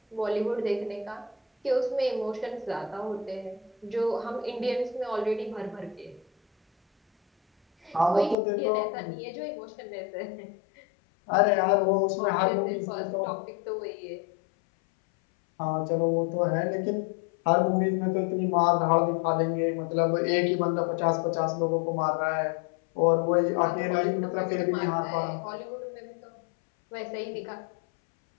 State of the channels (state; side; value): drops out; right; at 8.3 s